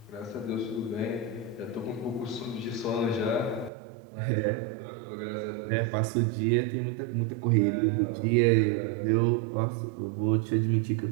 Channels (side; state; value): left; drops out; at 3.7 s